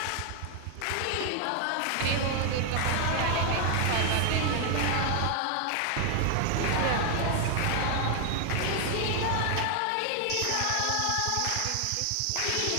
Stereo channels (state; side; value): different; both; correlation 0.01